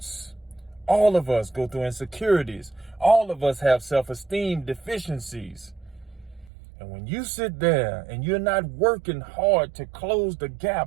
All of us go through insecurities. All of us have self-esteem deficiencies. And when you sit there and you're not working hard to close the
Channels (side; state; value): left; drops out; at 6.5 s